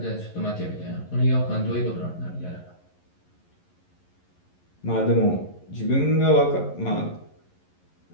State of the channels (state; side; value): late; right; 11 ms